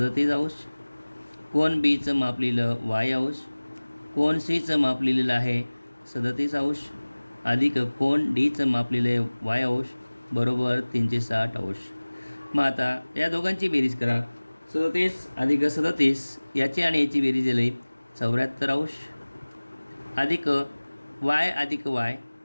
कोन बीचं माप लिहिलं y, कोन सीचं माप लिहिलेलं आहे 37 अधिक कोन डीचं माप लिहिलं y बरोबर 360. मग आता या दोघांची बेरीज करा. 37 अधिक 37 याची आणि याची बेरीज दिली 74 अधिक y अधिक y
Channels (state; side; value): inverted; both; correlation -1.00